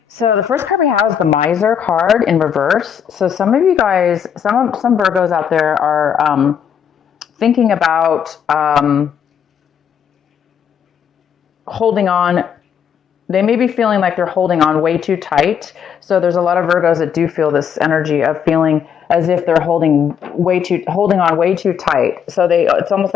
So the first card we have is the Miser card in reverse. So some of you guys, some Virgos out there are thinking about holding on. They may be feeling like they're holding on way too tight. So there's a lot of Virgos that do feel this energy of feeling as if they're holding on way too tight. So it's almost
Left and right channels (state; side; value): quieter; right; 8.0 dB